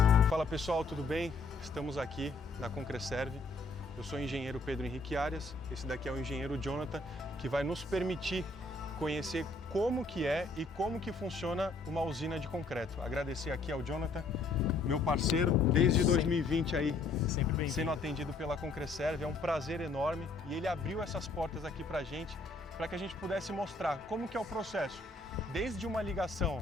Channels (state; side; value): quieter; right; 3.4 dB